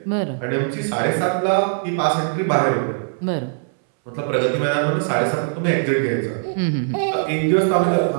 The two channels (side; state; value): left; silent; 65 dB below the other